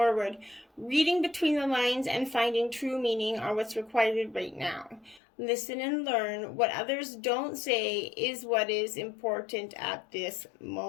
Reading between the lines and finding true meaning are what's required right now. Listen and learn. What others don't say is what is important at this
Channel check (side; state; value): right; drops out; at 5.2 s